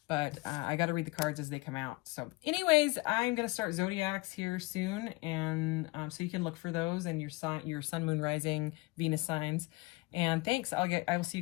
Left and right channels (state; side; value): quieter; right; 23.6 dB